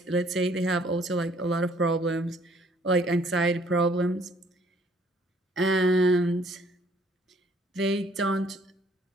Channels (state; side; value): normal; both; correlation 0.61